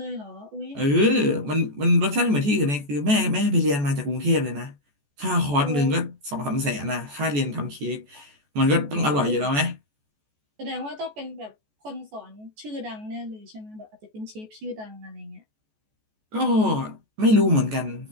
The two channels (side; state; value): left; late; 14 ms